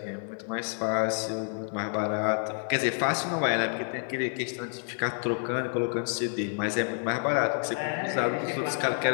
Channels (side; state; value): right; silent; 59 dB below the other